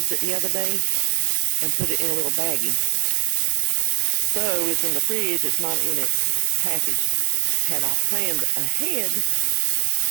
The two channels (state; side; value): silent; left; 65 dB below the other